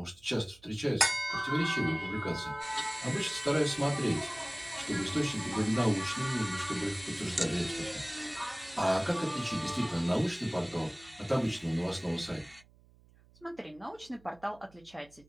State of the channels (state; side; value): noise; right; hum, 27 dB below the sound